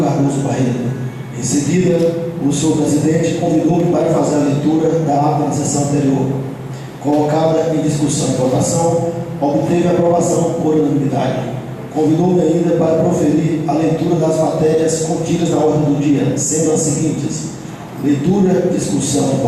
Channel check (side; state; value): both; identical; correlation 1.00